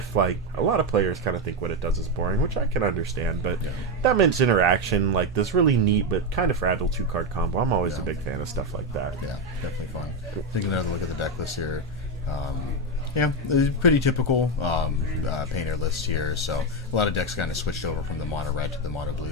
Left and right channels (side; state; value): both; normal; correlation 0.08